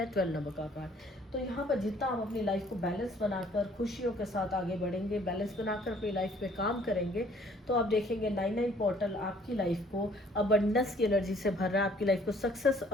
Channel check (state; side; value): normal; both; correlation 0.59